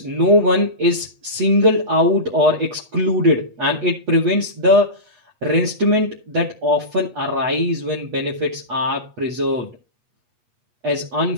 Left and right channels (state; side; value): late; left; 8.3 ms